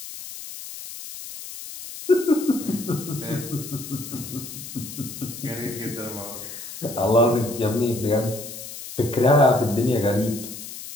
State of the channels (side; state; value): left; noise; hiss, 11 dB below the sound